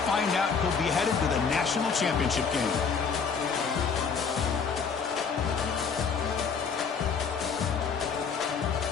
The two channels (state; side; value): quieter; right; 5.8 dB